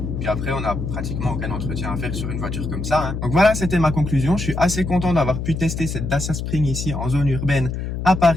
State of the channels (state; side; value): noise; left; hum, 4 dB below the sound